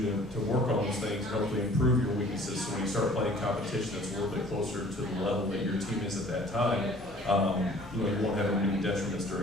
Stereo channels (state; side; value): normal; both; correlation 0.52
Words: to work on those things and hopefully improve your weaknesses. So when you start playing competition that's a little bit closer to the level that your team is at that time, you know, you won't have any detriments